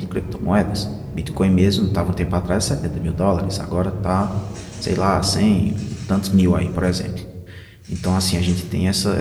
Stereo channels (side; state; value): both; identical; correlation 1.00